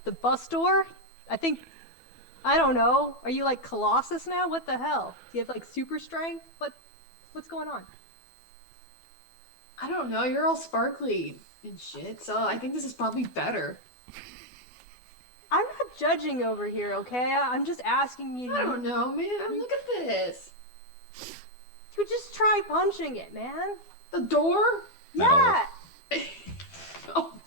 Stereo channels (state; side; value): late; right; 12 ms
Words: bus door? I don't know. Are you like Colossus now? What the hell? Do you have like super strength? What's going on? I don't know. You're all sparkly and shit, so I think this is probably better. I'm not judging over here, okay? I'm just asking you. I don't know, man. Look at this. You just try punching it, man. The door? Metal. Yeah. Oh.